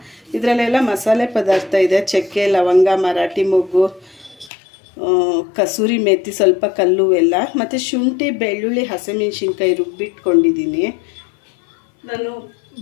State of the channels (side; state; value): right; drops out; at 4.5 s